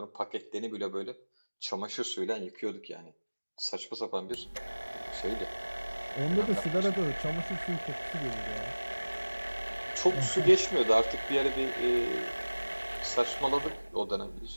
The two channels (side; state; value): both; inverted; correlation -1.00